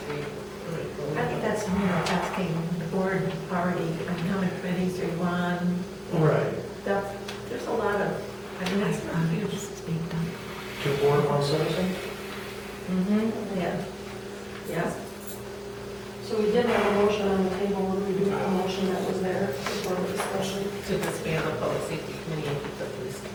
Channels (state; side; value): identical; both; correlation 1.00